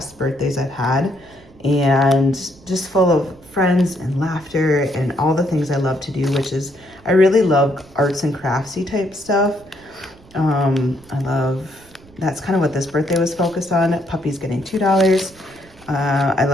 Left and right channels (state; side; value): noise; right; rumble, 26 dB below the sound